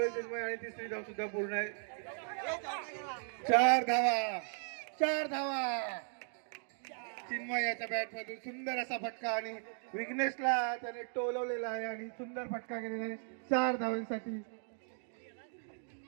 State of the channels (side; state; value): left; silent; 53 dB below the other